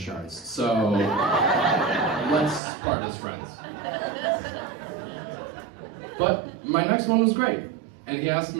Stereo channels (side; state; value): left; drops out; at 2.6 s